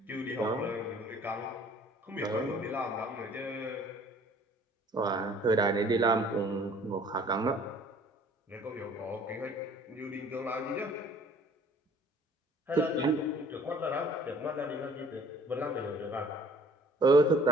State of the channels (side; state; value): both; normal; correlation 0.54